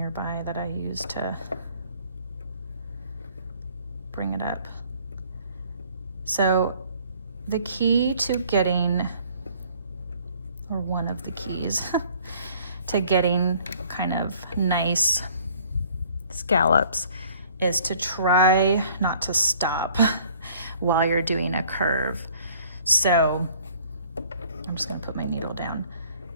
that I use to bring it up. So the key to getting, or one of the keys to getting kind of nice scallops, is to try not to stop while you're doing a curve. So I'm just gonna put my needle down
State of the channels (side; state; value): both; inverted; correlation -0.56